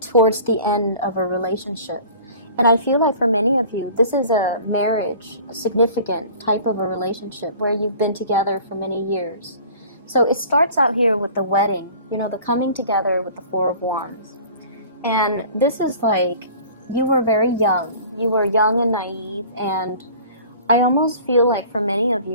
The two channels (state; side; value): inverted; both; correlation -0.45